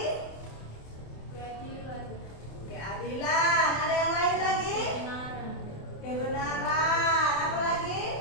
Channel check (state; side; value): late; right; 27 ms